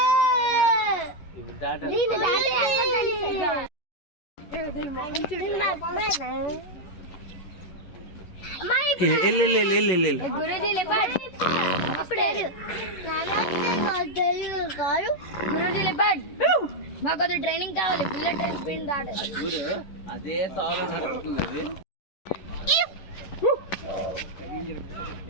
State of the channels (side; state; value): right; late; 11 ms